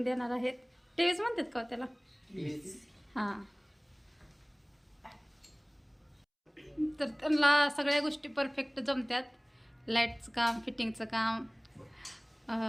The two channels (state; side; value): identical; both; correlation 1.00